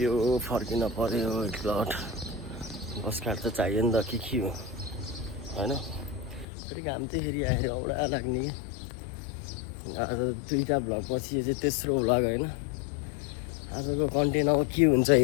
फर्किन पर्यो एकलट। बस काँड त चाहियो नि त, के हो होइन। फेरि घाम चाहिँ फेरि आएर औडा लाग्ने कि। आज 2टा भ्लग पछि यो चाहिँ तेस्रो भ्लग होइन। आजको कन्टेन्ट अब के हुन्छ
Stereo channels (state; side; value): drops out; right; at 6.5 s